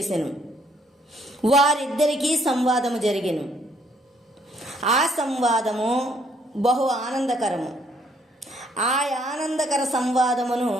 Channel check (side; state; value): both; normal; correlation 0.67